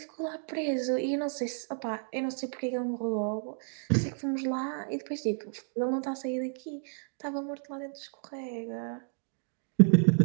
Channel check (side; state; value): left; silent; 57 dB below the other